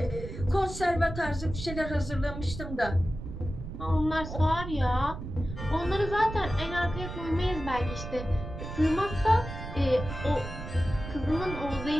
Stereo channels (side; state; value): right; noise; rumble, 9 dB below the sound